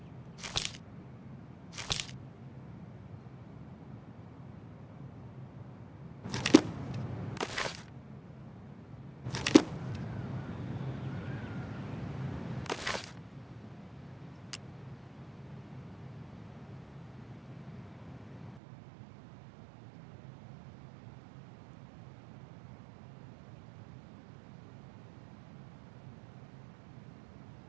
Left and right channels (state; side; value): drops out; left; at 18.6 s